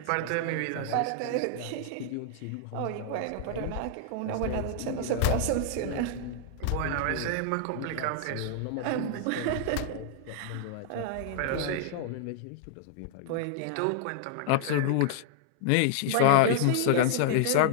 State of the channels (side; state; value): both; different; correlation -0.01